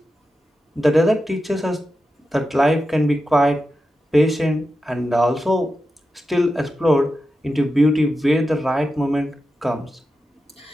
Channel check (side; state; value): both; normal; correlation 0.90